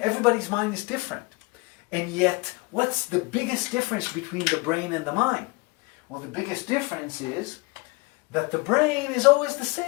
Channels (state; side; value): quieter; right; 25.0 dB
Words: mind is different. And yet, what's the biggest difference between the brain and the mind? Well, the biggest difference is that the brain is always the